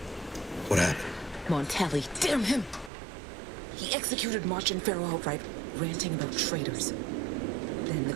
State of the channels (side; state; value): left; drops out; at 2.9 s